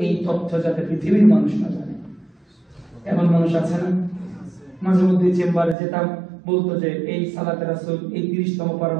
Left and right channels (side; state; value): left; drops out; at 5.8 s